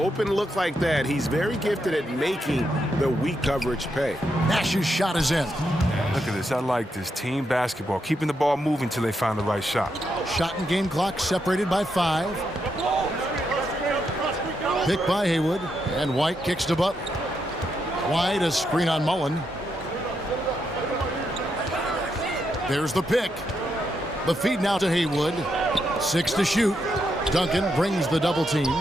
look like that, he's very gifted at making the weak coverage pay. Nash's shot is in. Look at this. I like this. Team basketball. Keeping the ball moving until they find the right shot. Shot and game clock separated by 5. Picked by Haywood. And White kicks to Butler. White, a screen on Mullen. There's the pick. The feed now to Haywood. 6 to shoot. Duncan brings the double team.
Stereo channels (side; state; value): both; normal; correlation 0.82